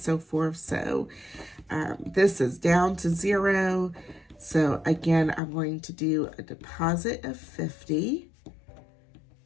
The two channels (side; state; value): right; drops out; at 5.4 s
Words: forth. So this is down to 0. So again, I'm going to do a deposit of 50.